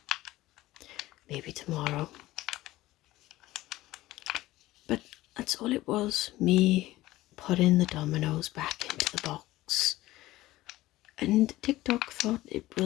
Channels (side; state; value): right; quieter; 17.0 dB